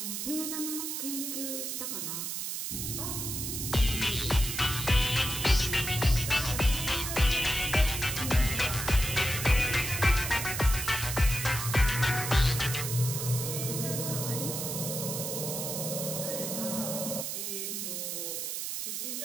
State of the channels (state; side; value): noise; right; hiss, 3 dB below the sound